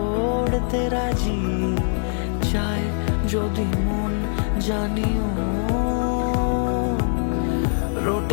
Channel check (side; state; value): right; silent; digital silence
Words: রাজি, চায় যদি মন জানিও।